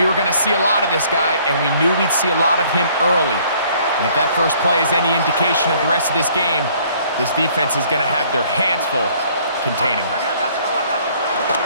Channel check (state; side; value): inverted; both; correlation -0.59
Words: were going to see a lot of this guy, and we knew we'd see a lot of him early. And if that first play is any indication of the rest of this game, this defense is going to have their hands full containing him.